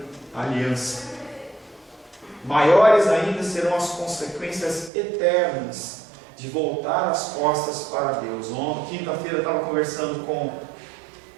aliança. Maiores ainda serão as consequências eternas de voltar as costas para Deus. Ontem, quinta-feira, eu estava conversando com...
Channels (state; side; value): drops out; left; at 4.9 s